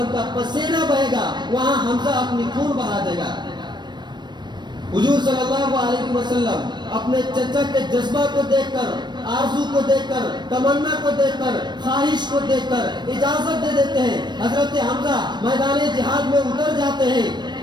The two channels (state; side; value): late; left; 0.21 ms